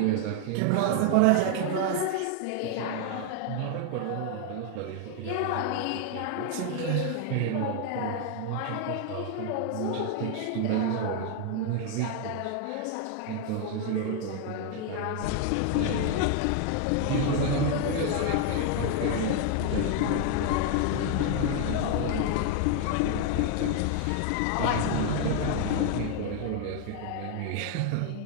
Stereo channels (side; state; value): both; different; correlation 0.00